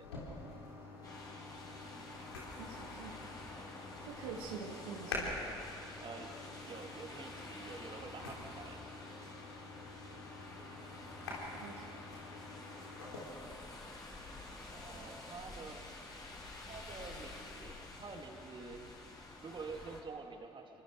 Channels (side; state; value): both; normal; correlation 0.39